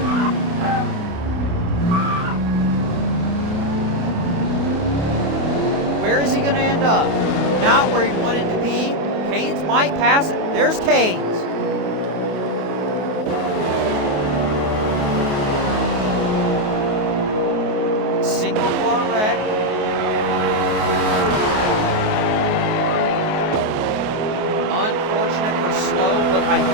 Where is he going to end up? Not where he wanted to be. Canes might pass it. There's Canes. Single car wreck. Unfortunate for Slow, but I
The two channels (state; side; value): late; left; 28 ms